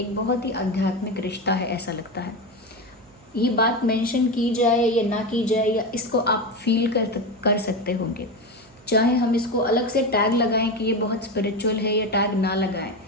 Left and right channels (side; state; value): right; noise; hum, 30 dB below the sound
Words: बहुत ही आध्यात्मिक रिश्ता है ऐसा लगता है। ये बात मेंशन की जाए या ना की जाए, या इसको आप फील कर सकते होंगे, चाहे हम इसको अलग से टैग लगाएं कि ये बहुत स्पिरिचुअल है या टैग ना लगाएं,